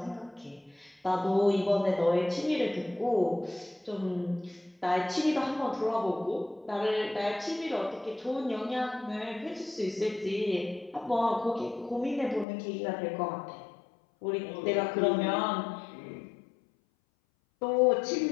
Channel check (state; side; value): drops out; right; at 12.5 s